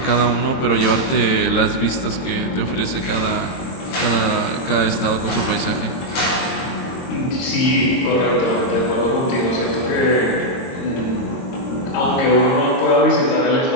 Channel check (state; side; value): late; right; 22 ms